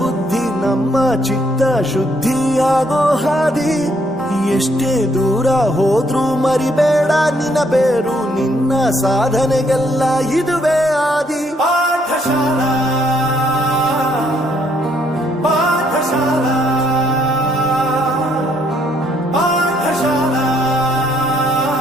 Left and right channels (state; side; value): normal; both; correlation 0.70